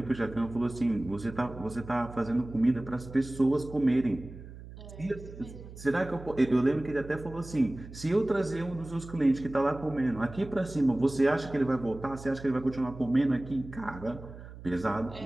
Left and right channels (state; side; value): noise; right; hum, 15 dB below the sound